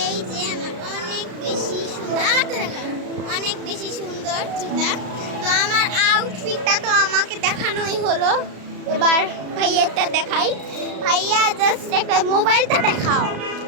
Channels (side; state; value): left; late; 33 ms